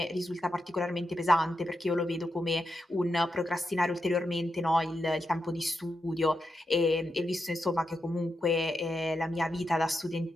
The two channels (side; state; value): both; normal; correlation 0.86